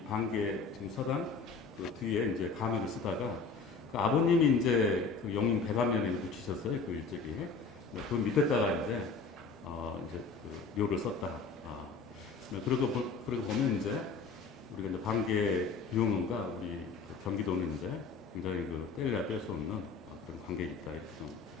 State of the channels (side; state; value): right; quieter; 4.6 dB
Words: 방계 지금 서당 뒤에 이제 가묘를 쓰다가, 아버님이 이제 용인 백안면에 묻히셨어요. 그 일찍이. 그 밑에다가 이제 묘를 썼다. 그러고 보면 이제 우리가 이제 반개 유흥원과 우리 그 경기도는 이제 굉장히 그 뗄래야 뗄 수 없는 그런 관계가 있다 이렇게 좀